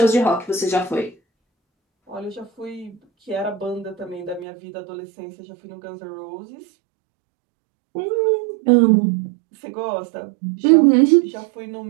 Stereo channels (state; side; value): drops out; left; at 4.5 s